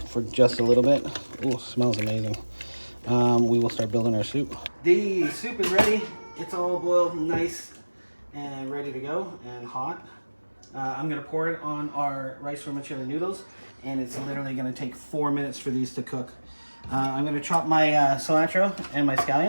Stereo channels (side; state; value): both; inverted; correlation -1.00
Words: for just a little bit, ooh, smells amazing, we will start building our soup. The soup is ready. It's all boiled nice and ready to go and hot. I'm gonna pour it on our rice vermicelli noodles, and it's literally gonna take 4 minutes for these to cook. I'm gonna chop my cilantro and my